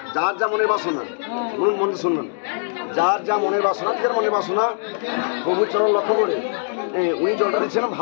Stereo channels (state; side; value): silent; right; digital silence